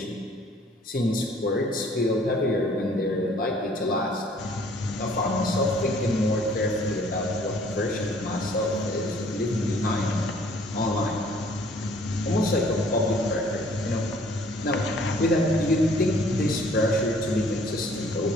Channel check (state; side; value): normal; both; correlation 0.58